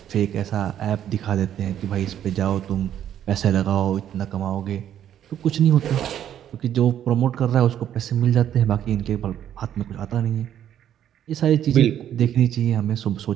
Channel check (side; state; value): left; quieter; 10.5 dB